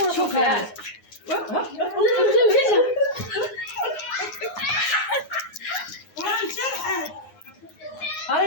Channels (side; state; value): right; late; 9.6 ms